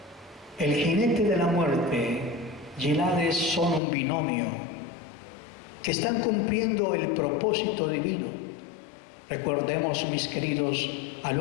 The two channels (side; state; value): right; drops out; at 3.8 s